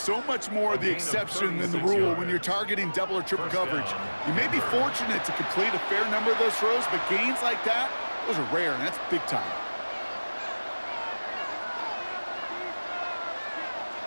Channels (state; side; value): inverted; both; correlation -1.00